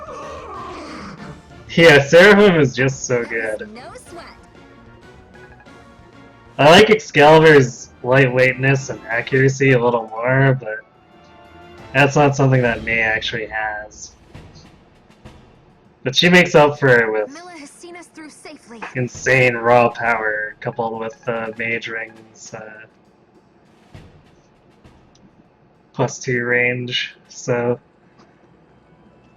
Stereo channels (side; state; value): both; identical; correlation 1.00